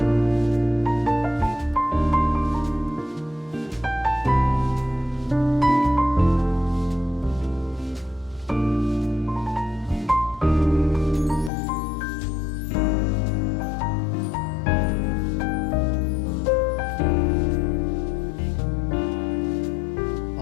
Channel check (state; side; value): drops out; right; at 11.5 s